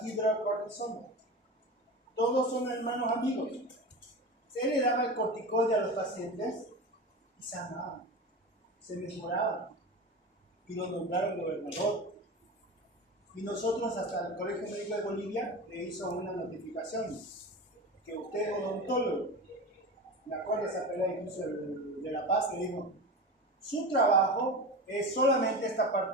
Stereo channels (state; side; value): normal; both; correlation 0.27